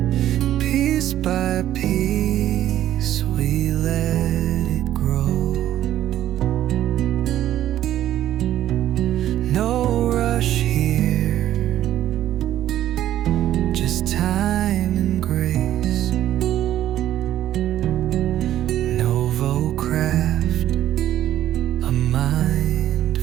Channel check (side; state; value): left; quieter; 12.4 dB